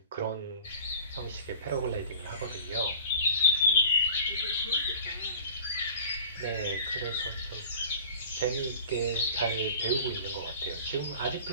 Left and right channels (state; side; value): inverted; both; correlation -0.43